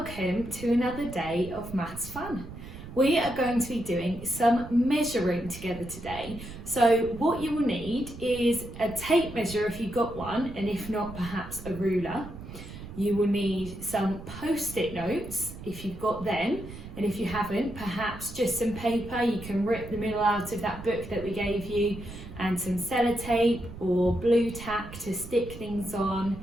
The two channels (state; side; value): noise; right; rumble, 13 dB below the sound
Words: to another day of maths fun. We are going to be doing some measuring together today. So what you will need is a tape measure if you've got one, and if not, perhaps a ruler. You will need some post-it notes if you've got them, and if you haven't, perhaps just some paper. You can rip the middle out of that book that we gave you, and some sellotape or blue tack to stick things on,